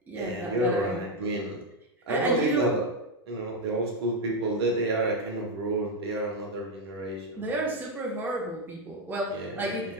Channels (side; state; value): both; normal; correlation 0.04